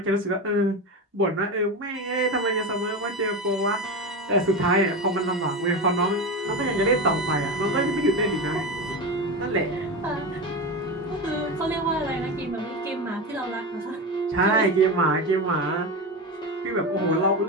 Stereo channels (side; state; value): both; normal; correlation 0.20